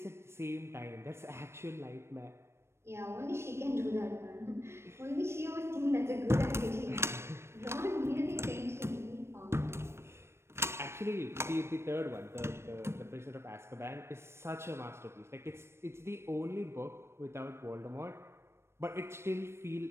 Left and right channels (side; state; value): left; late; 0.13 ms